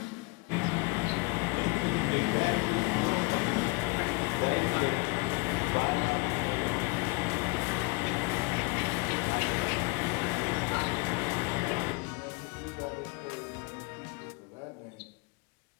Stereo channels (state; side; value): quieter; right; 27.8 dB